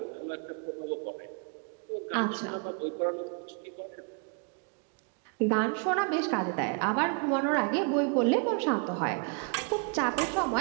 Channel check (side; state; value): left; quieter; 36.0 dB